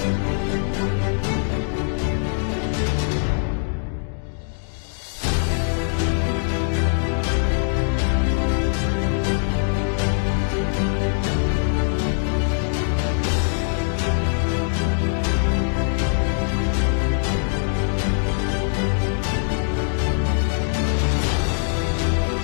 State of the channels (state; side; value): silent; right; digital silence